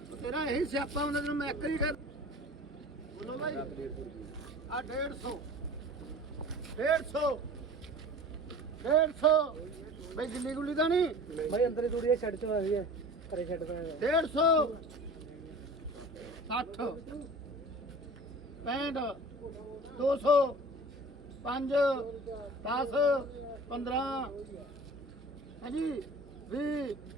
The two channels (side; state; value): both; normal; correlation 0.40